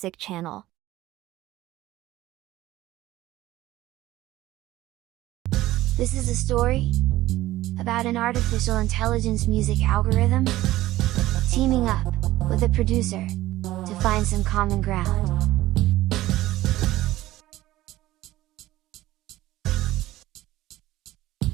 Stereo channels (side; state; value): left; quieter; 16.1 dB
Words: channel. This is a story about an artificial intelligence music algorithm teaming up with a producer to find some common ground.